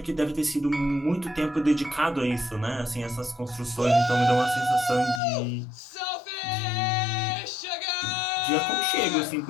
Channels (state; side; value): drops out; right; at 5.2 s